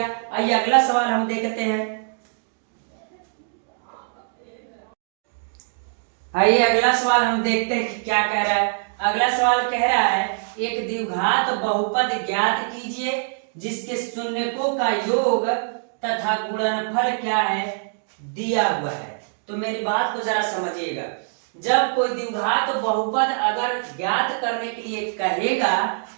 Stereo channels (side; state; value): left; silent; digital silence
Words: आइए अगला सवाल हम देखते हैं। आइए अगला सवाल हम देखते हैं कि क्या कह रहा है। अगला सवाल कह रहा है एक द्विघात बहुपद ज्ञात कीजिए जिसके शून्यकों का योग तथा गुणनफल क्या है? दिया हुआ है। तो मेरी बात को जरा समझिएगा। जब कोई द्विघात बहुपद अगर ज्ञात करने के लिए कहेगा,